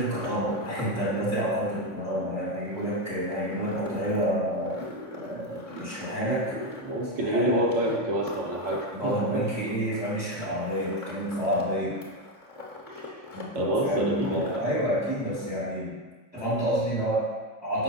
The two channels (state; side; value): late; left; 3.5 ms